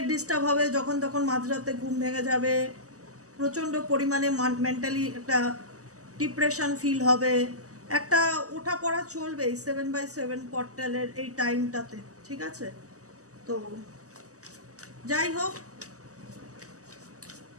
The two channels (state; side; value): late; left; 0.66 ms